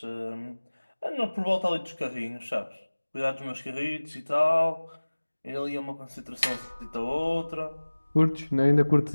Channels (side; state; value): both; inverted; correlation -1.00